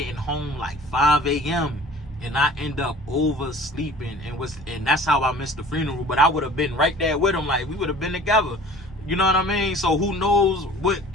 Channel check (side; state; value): both; normal; correlation 0.46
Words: home like 5 a.m. and I ended up oversleeping, and that's how I missed the funeral. But I would have been right there with him, like we would have been together. You know what I mean? So who knows what,